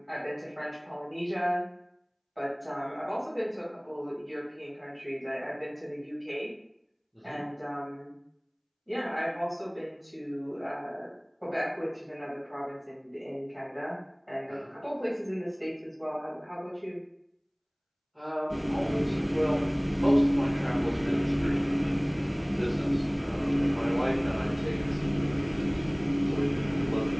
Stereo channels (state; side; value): identical; both; correlation 1.00